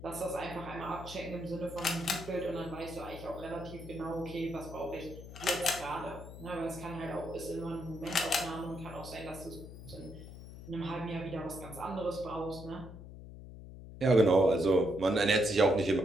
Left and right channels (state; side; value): noise; left; hum, 13 dB below the sound